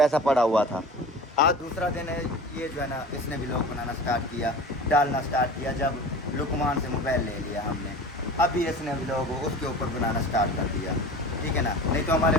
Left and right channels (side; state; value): both; normal; correlation 0.37